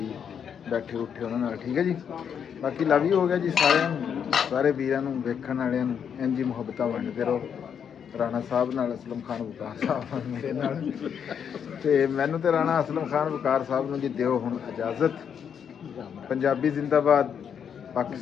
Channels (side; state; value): right; quieter; 7.8 dB